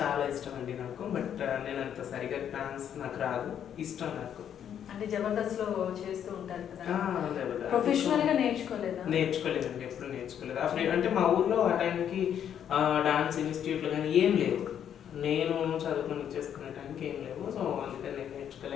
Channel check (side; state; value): right; quieter; 9.2 dB